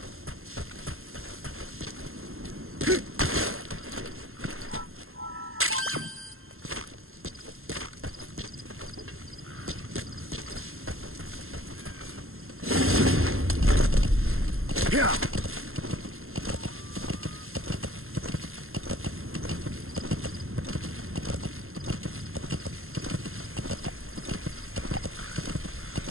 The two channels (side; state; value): left; late; 0.61 ms